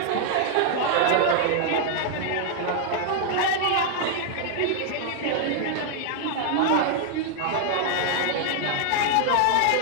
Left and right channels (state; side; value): different; both; correlation 0.00